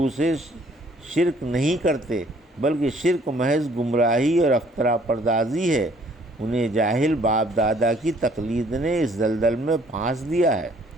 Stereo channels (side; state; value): both; normal; correlation 0.60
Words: شرک نہیں کرتے، بلکہ شرک محض گمراہی اور افترا پردازی ہے۔ انہیں جاہل باپ دادا کی تقلید نے اس دلدل میں پھانس دیا ہے۔